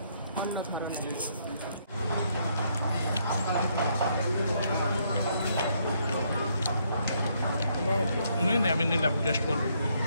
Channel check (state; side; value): inverted; both; correlation -0.72